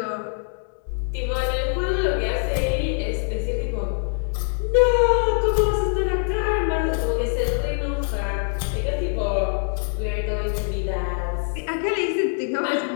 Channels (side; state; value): right; silent; 56 dB below the other